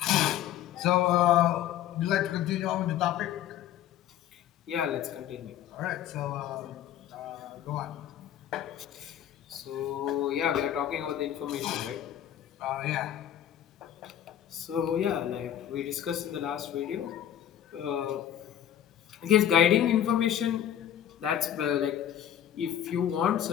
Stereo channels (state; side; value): quieter; right; 10.8 dB